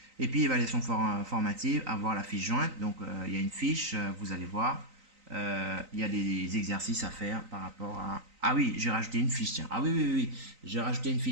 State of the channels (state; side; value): late; left; 3.9 ms